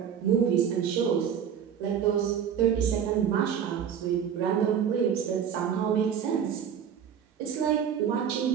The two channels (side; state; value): left; quieter; 8.3 dB